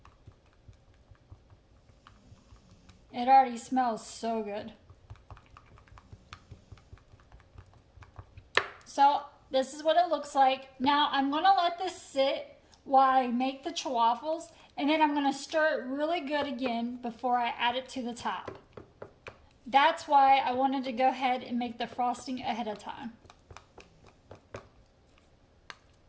It already smells so good. So this is what it looks like. Now I'm going to let this sit while I make the chaffles, and then I'm going to stir it really good again before I add it to the top. That's why I wanted to go ahead and make the frosting ahead of time.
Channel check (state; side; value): identical; both; correlation 1.00